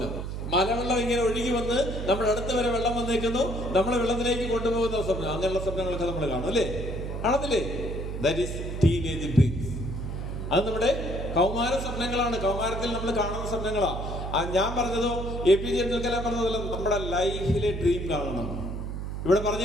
മലവെള്ളം ഇങ്ങനെ ഒഴുകി വന്ന് നമ്മുടെ അടുത്ത് വരെ വെള്ളം വന്നേക്കുന്നു, നമ്മളെ വെള്ളത്തിലേക്ക് കൊണ്ടുപോകുന്ന സ്വപ്നം. അങ്ങനെയുള്ള സ്വപ്നങ്ങളൊക്കെ നമ്മൾ കാണും, അല്ലേ? കാണത്തില്ലേ? That is teenage dreams. അത് നമ്മുടെ കൗമാര സ്വപ്നങ്ങളാണ്. കൗമാരത്തിൽ നമ്മൾ കാണുന്ന സ്വപ്നങ്ങളാണ്. ഞാൻ പറഞ്ഞതോ APJ അബ്ദുൽ കലാം പറഞ്ഞതല്ല, നമ്മുടെ ലൈഫിലെ ഡ്രീം കാണണം. ഇവിടെ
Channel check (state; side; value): noise; right; hum, 5 dB below the sound